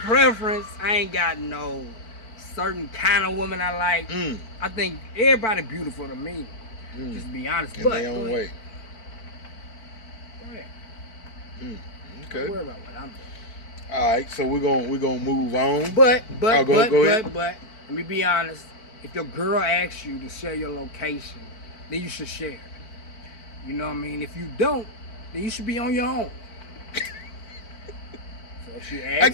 I ain't got no certain kind of woman I like. I think everybody beautiful to me. Just be honest. In their own way. Go ahead. Okay. Don't worry about what I'm doing. All right, so we're gonna move on. But Go ahead. let me be honest. If your girl asks you to share your location, then you should share it. You know what I mean? If you don't, then you should be on your own. So if she asks I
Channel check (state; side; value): late; right; 4.5 ms